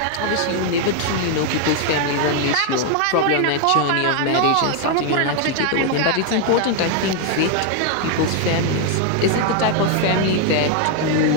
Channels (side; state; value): both; different; correlation 0.00